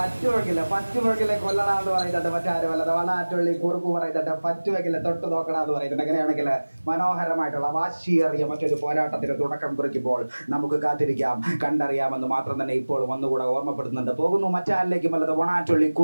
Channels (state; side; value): inverted; both; correlation -1.00